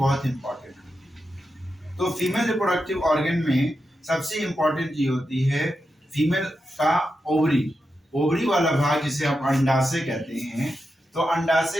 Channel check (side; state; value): both; normal; correlation 0.88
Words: इंपॉर्टेंट है। तो फीमेल रिप्रोडक्टिव ऑर्गन में सबसे इंपॉर्टेंट चीज होती है फीमेल का ओवरी। ओवरी वाला भाग जिसे हम अंडाशय कहते हैं। तो